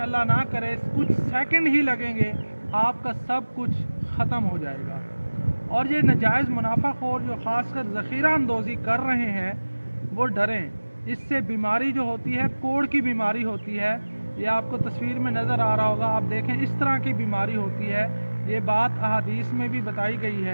ना करे कुछ सेकंड ही लगेंगे, आपका सब कुछ ख़त्म हो जाएगा। और ये नाजायज़ मुनाफाखोर जो ख़ासकर ज़ख़ीरा अंदोज़ी कर रहे हैं वो डरें। इससे बीमारी जो होती है, कोढ़ की बीमारी होती है, ये आपको तस्वीर में नज़र आ रहा होगा, आप देखें इस तरह की बीमारी होती है। ये बात अहादीस में भी बताई गई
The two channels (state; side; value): inverted; both; correlation -1.00